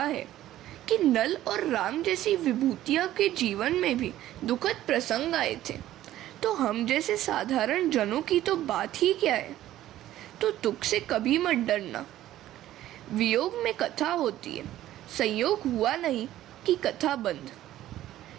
है कि नल और राम जैसी विभूतियां के जीवन में भी दुखद प्रसंग आए थे, तो हम जैसे साधारण जनों की तो बात ही क्या है। तो दुख से कभी मत डरना। वियोग में कथा होती है, संयोग हुआ नहीं कि कथा बंद।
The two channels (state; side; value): quieter; left; 13.7 dB